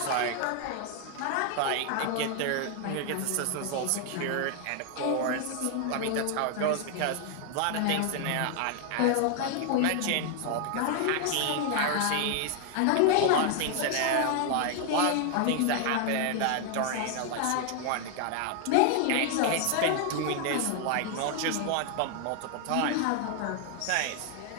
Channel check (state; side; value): different; both; correlation 0.00